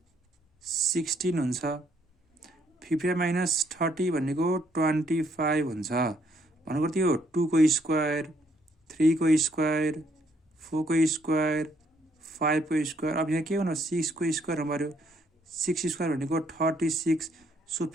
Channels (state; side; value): normal; both; correlation 0.69